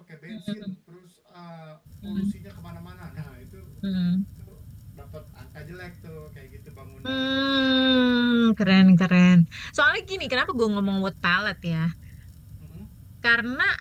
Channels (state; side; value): identical; both; correlation 1.00